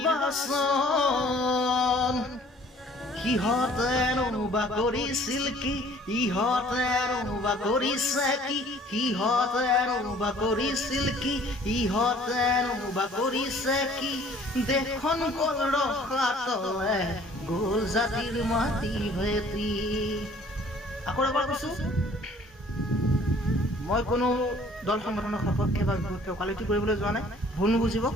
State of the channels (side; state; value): both; normal; correlation 0.54